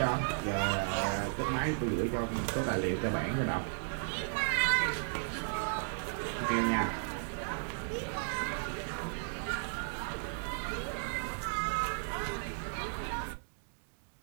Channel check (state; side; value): silent; left; digital silence